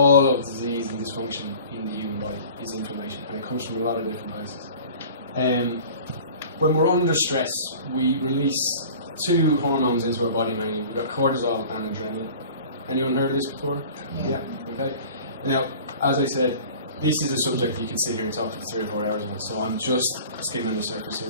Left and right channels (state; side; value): inverted; both; correlation -0.43